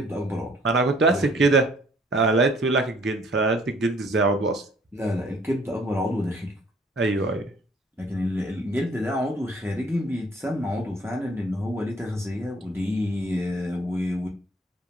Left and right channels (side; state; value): both; normal; correlation 0.59